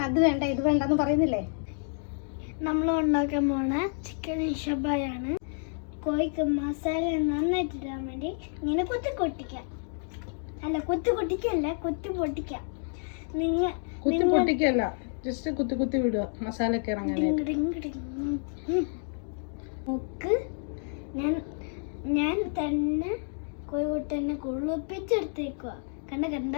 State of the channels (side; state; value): right; silent; 58 dB below the other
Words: അത് വേണ്ട ഇത് വേണ്ടെന്ന് പറയുന്നില്ലേ? നമ്മൾ ഉണ്ടാക്കാൻ പോണ ചിക്കൻ ഷബായാണ്. കോഴിക്ക് മസാല നന്നായിട്ട് ഇടാൻ വേണ്ടി ഇങ്ങനെ കുത്തി പൊട്ടിക്കാം. ജസ്റ്റ് കുത്തി വിടുക, മസാല ഒക്കെ നോക്ക്, ഞാൻ തന്നെ കോഴിക്കുട്ടനെ കുളിപ്പിച്ചെടുത്തേക്കുക.